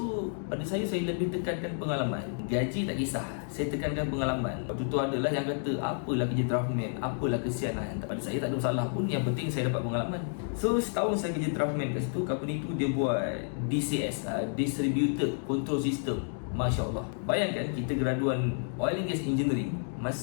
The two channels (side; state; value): right; silent; 57 dB below the other